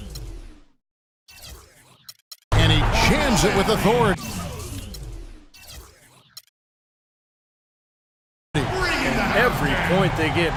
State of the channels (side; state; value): both; identical; correlation 1.00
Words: And he jams it with authority. Every point they get